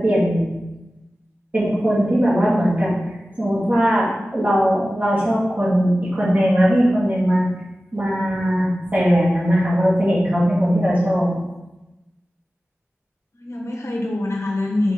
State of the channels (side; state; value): both; normal; correlation 0.95